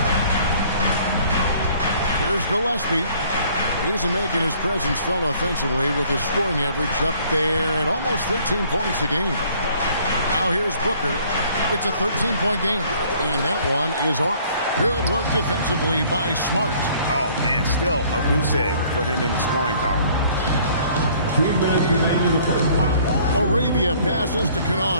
Here's Gillespie. He's making his presence felt offensively with his scoring average up there at almost 13 points a game. Now here's Booker. It's a 13-point game, and that one is off. Good work defensively by Smart. Oh, man, still a goose egg for him in the scoring column. 2 minutes remaining in the first. Arabia passes to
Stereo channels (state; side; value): inverted; both; correlation -0.57